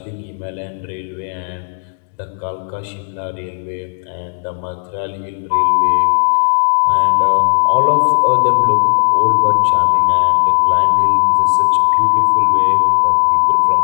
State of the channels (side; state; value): right; silent; digital silence